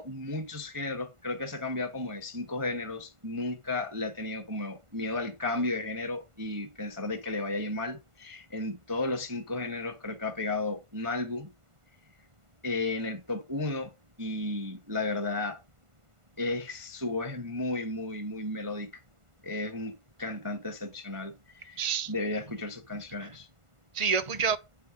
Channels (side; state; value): left; late; 1.5 ms